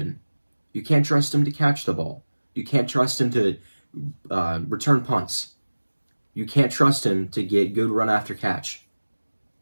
you can't trust him to catch the ball, you can't trust him to return punts, you can't trust him to get good run after catch,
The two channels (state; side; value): inverted; both; correlation -1.00